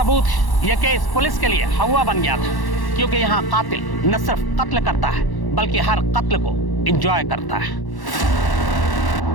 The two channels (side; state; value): right; late; 1.1 ms